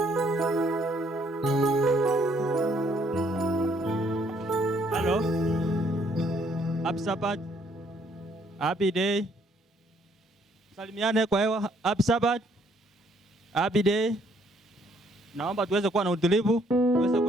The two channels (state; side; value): normal; both; correlation 0.66